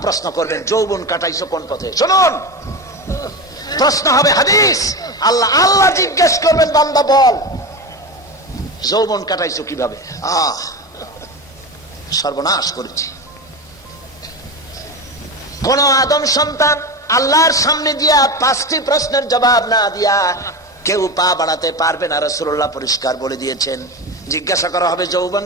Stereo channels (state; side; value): normal; both; correlation 0.22